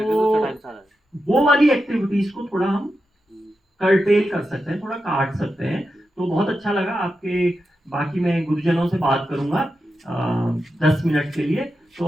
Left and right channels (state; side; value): normal; both; correlation 0.89